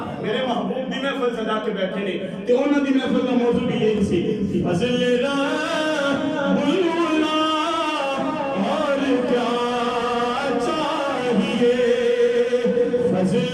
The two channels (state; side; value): identical; both; correlation 1.00